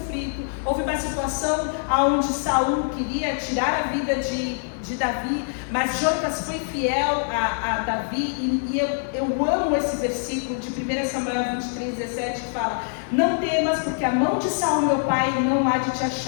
houve uma situação onde Saul queria tirar a vida de Davi, mas Jonatas foi fiel a Davi, e eu amo esse versículo de 1 Samuel 23:17, que fala: não temas, porque a mão de Saul meu pai não há de te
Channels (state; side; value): silent; right; 60 dB below the other